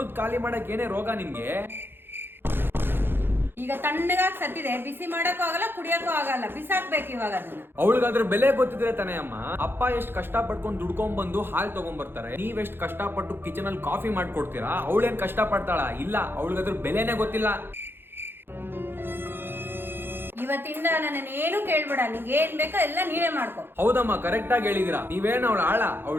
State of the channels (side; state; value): left; late; 0.10 ms